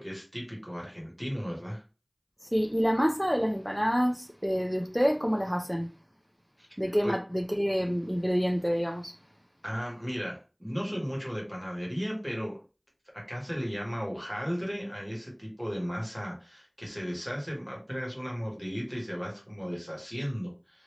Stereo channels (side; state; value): both; identical; correlation 1.00